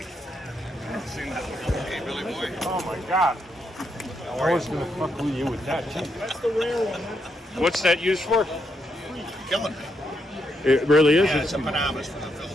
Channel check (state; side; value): normal; both; correlation 0.80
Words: Oh my God! I was gonna fuck with you with that too. That's the rare one. What's that used for? Killing me. It really is. Yeah, it's a Panamas from the